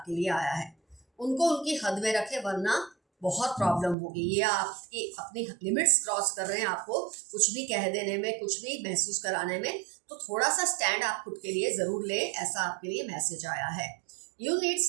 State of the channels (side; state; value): left; drops out; at 4.0 s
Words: लिए आया है। उनको उनकी हद में रखें वरना बहुत प्रॉब्लम होगी। ये आपकी अपनी लिमिट्स क्रॉस कर रहे हैं, आपको कुछ भी कह देने में, कुछ भी महसूस कराने में, तो थोड़ा सा स्टैंड आप खुद के लिए ज़रूर लें, ऐसा आपके लिए मैसेज आया है। You need